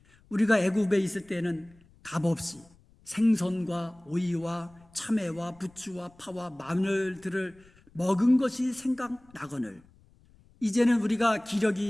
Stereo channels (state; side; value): noise; left; rumble, 29 dB below the sound